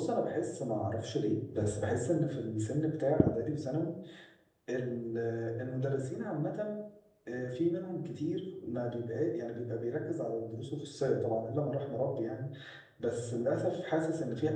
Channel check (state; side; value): identical; both; correlation 1.00